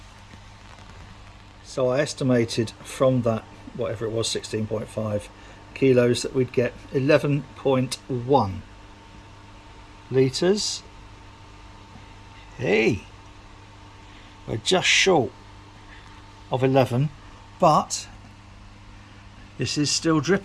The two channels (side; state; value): both; identical; correlation 1.00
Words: So I estimated from that, whatever it was, 16.5 kilos, that we'd get 11.1 litres. Hey, we're just short of 11, but this is still